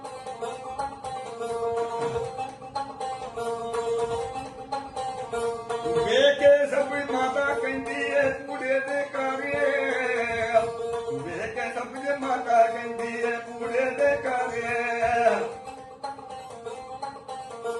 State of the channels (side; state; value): both; identical; correlation 1.00